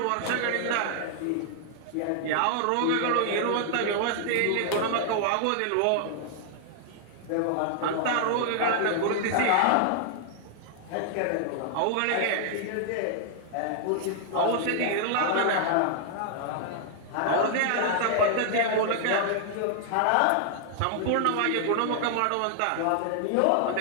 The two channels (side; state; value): both; different; correlation -0.01